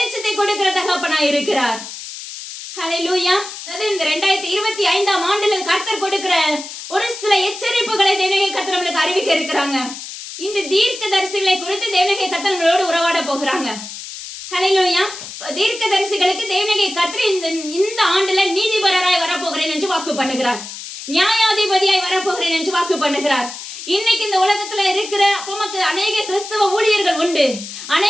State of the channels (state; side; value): noise; left; hiss, 11 dB below the sound